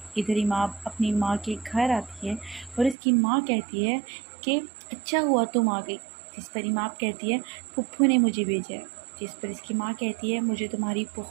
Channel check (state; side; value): drops out; left; at 3.0 s